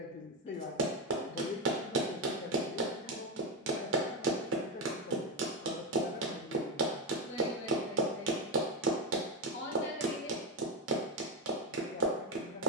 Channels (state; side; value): normal; both; correlation 0.11